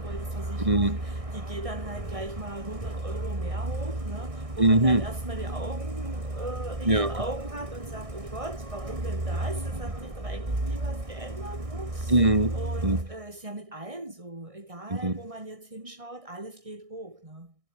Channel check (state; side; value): late; left; 1.6 ms